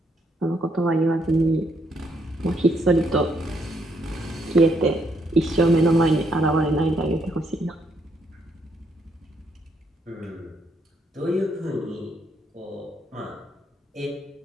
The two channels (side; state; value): both; normal; correlation 0.74